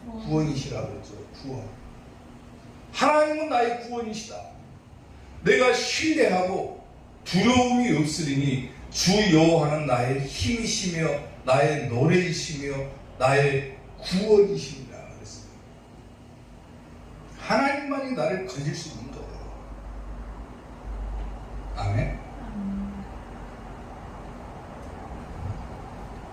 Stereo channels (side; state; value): both; identical; correlation 1.00